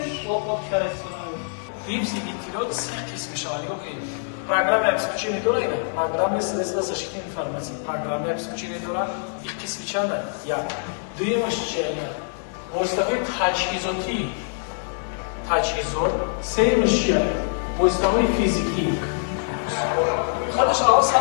و پورت کار استفاده کنید Випси диктирует قسمش رو که программа обеспечения дora ida программа средства защиты информации программа обеспечения dora их qismichanda ya дуемаш чия востафой тажҳизот сеюмаш чия востафой физики хадаш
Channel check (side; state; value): right; silent; digital silence